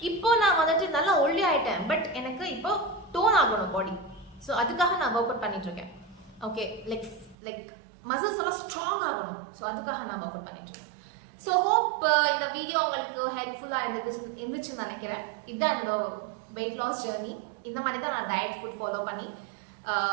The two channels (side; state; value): left; drops out; at 7.4 s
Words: இப்போ நான் வந்துட்டு நல்லா ஒல்லி ஆயிட்டேன். பட் எனக்கு இப்போ டோன் ஆகணும் பாடி. ஸோ அதுக்காக நான் ஒர்க் அவுட் பண்ணிட்டு இருக்கேன். ஓகே, லைக் மசில்ஸ் எல்லாம் ஸ்ட்ராங் ஆகணும். ஸோ அதுக்காக நான் ஒர்க் அவுட் பண்ணிட்டு இருக்கேன். ஸோ ஹோப் இந்த வீடியோ உங்களுக்கு ஹெல்ப்ஃபுல்லாக இருந்துச்சுன்னு நினைக்கிறேன். இதுதான் என்னோட வெயிட் லாஸ் ஜேர்னி. இந்த மாதிரி தான் நான் டயட் ஃபுட் ஃபாலோ பண்ணி